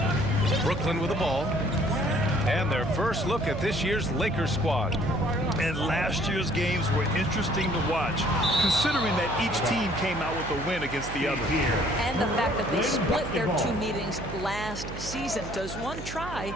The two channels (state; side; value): noise; right; hum, 10 dB below the sound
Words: Brooklyn with the ball. And their first look at this year's Lakers squad. And last year's games were interesting to watch, considering that each team came out with a win against the other. And the fact that they split their two meetings last season. Does one try